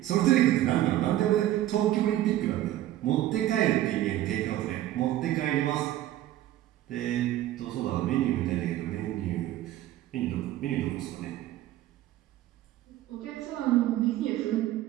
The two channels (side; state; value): left; quieter; 13.9 dB